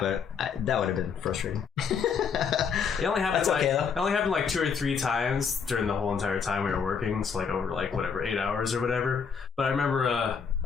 that would have been frustrating. It only happened That's okay, though. it only happened like 2 or 3 times during the whole entire time we were working, so like over like whatever 8 hours or whatever. But I remember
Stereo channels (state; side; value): quieter; right; 6.3 dB